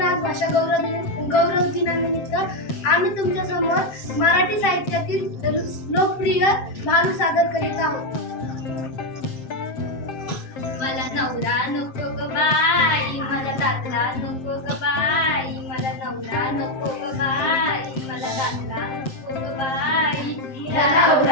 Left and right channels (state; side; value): late; right; 7.6 ms